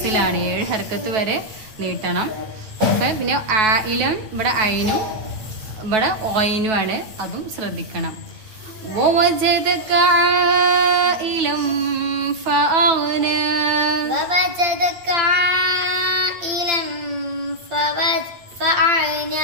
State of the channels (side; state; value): left; late; 9.2 ms